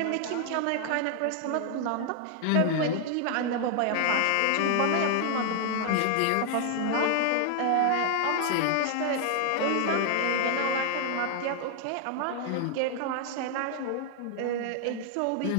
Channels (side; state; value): both; different; correlation 0.00